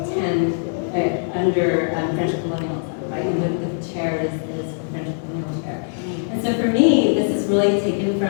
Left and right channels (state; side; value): silent; right; digital silence